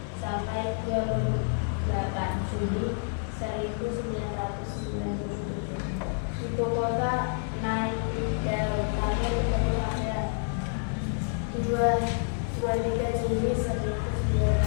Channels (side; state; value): right; silent; digital silence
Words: sampai 28 Juli 1997. Ibu kota Naypyidaw bertemu pada 23 Juli